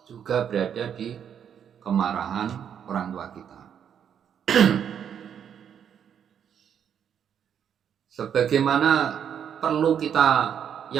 juga berada di kemarahan orang tua kita. Sebagaimana perlu kita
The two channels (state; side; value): quieter; left; 8.5 dB